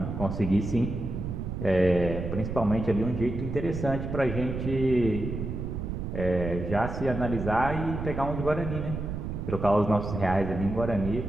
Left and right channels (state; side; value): noise; right; rumble, 5 dB below the sound